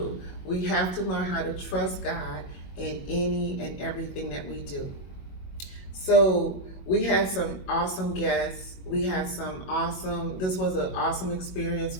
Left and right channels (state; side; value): late; right; 22 ms